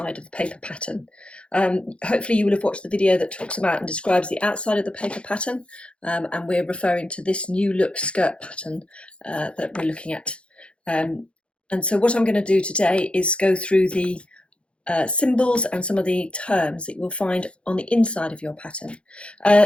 of the paper pattern. Hopefully you will have watched the video that talks about and describes the outside of the paper pattern, and we're referring to this new look skirt pattern that we're looking at. And so what I'm going to do today is go through the symbols and some of the terms that you will find on the inside of your pattern.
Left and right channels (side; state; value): right; late; 0.059 ms